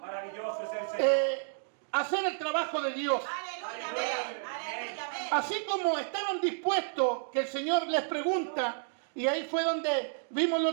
a hacer el trabajo de Dios. Así como estaban dispuestos, que el Señor les pregunta, y ahí fue donde vimos el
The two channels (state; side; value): silent; left; digital silence